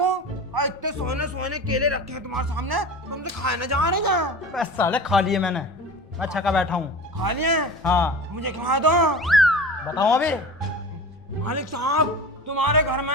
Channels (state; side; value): noise; left; rumble, 28 dB below the sound